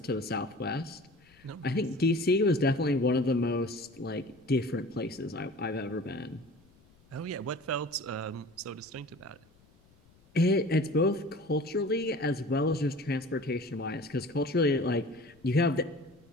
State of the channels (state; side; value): noise; left; rumble, 30 dB below the sound